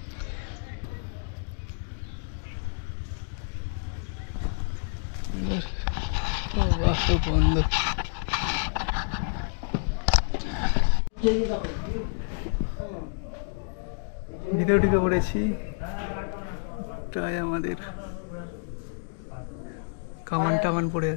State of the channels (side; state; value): right; silent; digital silence